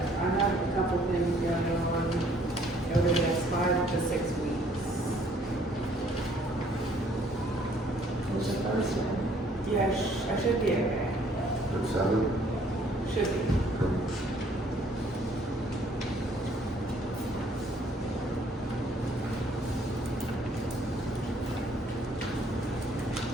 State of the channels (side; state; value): both; normal; correlation 0.62